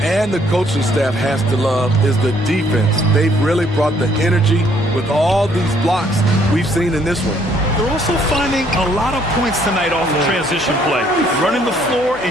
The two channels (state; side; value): noise; left; hum, 22 dB below the sound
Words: and the coaching staff has to love, is the defense. They've really brought the energy with all these blocks we've seen in this one. They're also finding a lot of points tonight off of transition play, running the floor